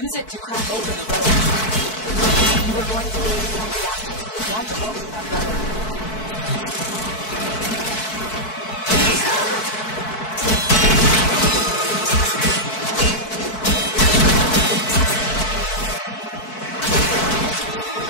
beyond? What is truly large and truly small? To explore, to observe,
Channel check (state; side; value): late; right; 4.6 ms